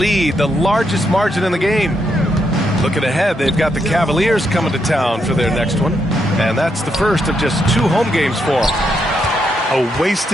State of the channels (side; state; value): both; normal; correlation 0.79